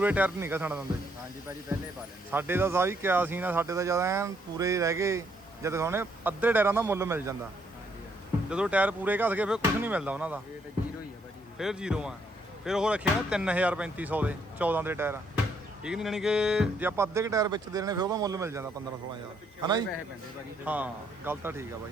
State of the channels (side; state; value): both; normal; correlation 0.71